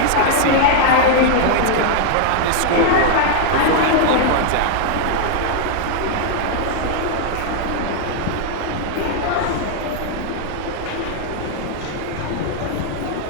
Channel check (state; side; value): different; both; correlation -0.01